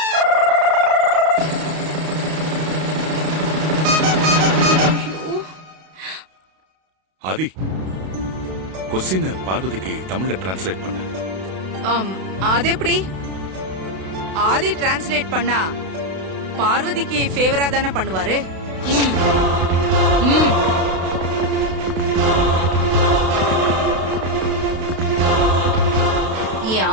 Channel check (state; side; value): late; left; 32 ms